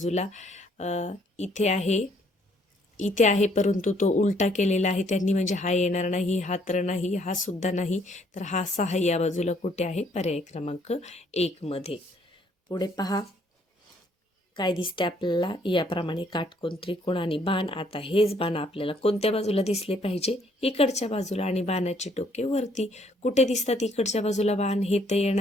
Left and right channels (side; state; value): both; normal; correlation 0.66